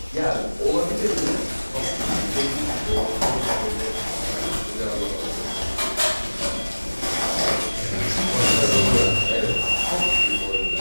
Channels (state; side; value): inverted; both; correlation -1.00